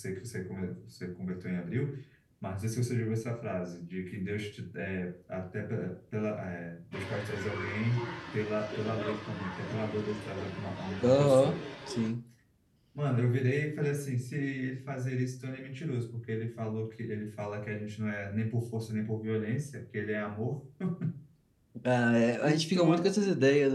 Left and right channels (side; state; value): both; identical; correlation 1.00